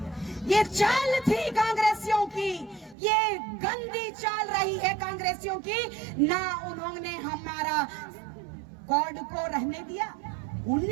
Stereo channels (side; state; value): left; drops out; at 3.0 s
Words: ये चाल थी कांग्रेसियों की, ये गंदी चाल रही है कांग्रेसियों की। ना उन्होंने हमारा कोड को रहने दिया।